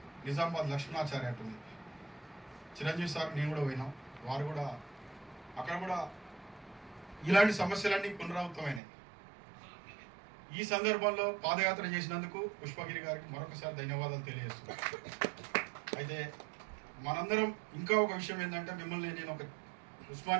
నిజామాబాద్ లక్ష్మణాచార్య అంటుంది, చిరంజీవి సార్ నేను కూడా పోయినాం. వారు కూడా అక్కడ కూడా ఇలాంటి సమస్యలన్నీ పునరావృతమైనాయి. ఈ సందర్భంలో పాదయాత్ర చేసినందుకు పుష్పగిరి గారికి మరొకసారి ధన్యవాదాలు తెలియజేస్తున్నాను. అయితే మనందరం ఇంకా ఒక విషయం ఏంటంటే, మిమ్మల్ని నేను ఒక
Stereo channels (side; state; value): left; drops out; at 8.8 s